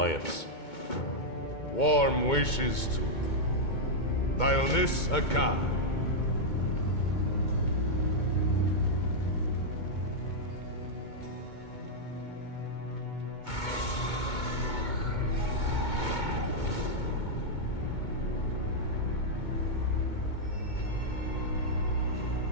Warm wishes to Dionys Akkad.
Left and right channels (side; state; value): right; late; 2.2 ms